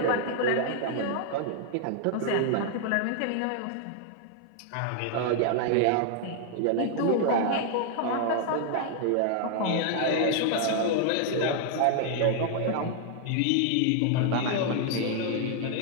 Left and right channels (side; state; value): both; different; correlation 0.00